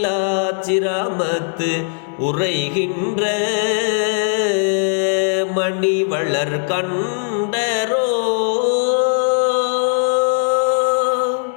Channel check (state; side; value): silent; right; 67 dB below the other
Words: உரைகின்ற மணிவளர் கண்டரோ,